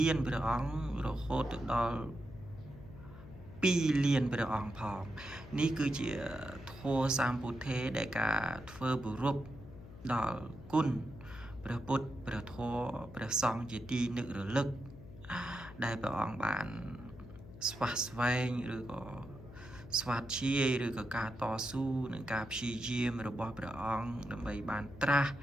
ានព្រះអង្គរហូតទៅដល់2លានព្រះអង្គផងនេះគឺជាធម៌សម្ពុទ្ធេដែលការធ្វើគោរពដល់គុណព្រះពុទ្ធព្រះធម៌ព្រះសង្ឃជាទីនឹករលឹកដែលព្រះអង្គបានស្វះស្វែងឬក៏ស្វាធ្យាយឬក៏ការតស៊ូនឹងការព្យាយាមរបស់ព្រះអង្គដើម្បីបានត្រាស់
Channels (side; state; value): left; noise; hum, 16 dB below the sound